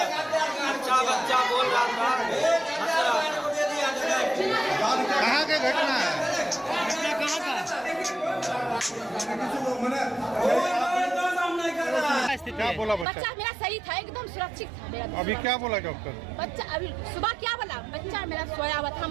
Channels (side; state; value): left; drops out; at 13.1 s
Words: अच्छा बच्चा बोल रहा था, हंस रहा था। कहाँ के घटना है? घटना कहाँ का? क्या बोला बच्चा? बच्चा मेरा सही था, एकदम सुरक्षित था मेरा। अभी क्या बोला डॉक्टर? बच्चा अभी सुबह क्या बोला? बच्चा मेरा सोया हुआ था,